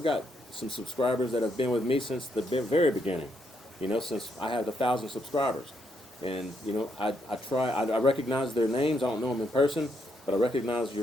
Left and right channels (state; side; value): normal; both; correlation 0.77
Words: got some subscribers that have been with me since the very beginning, since I had 1,000 subscribers. And, I recognize their names. I don't know them in person, but I recognize